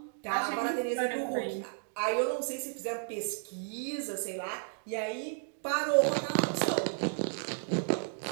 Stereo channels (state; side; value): silent; left; digital silence